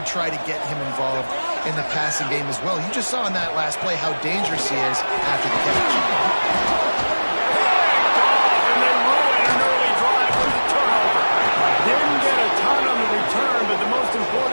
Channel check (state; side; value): inverted; both; correlation -1.00